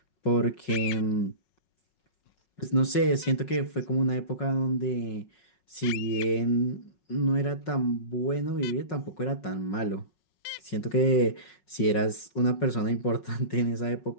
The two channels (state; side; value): late; right; 5.4 ms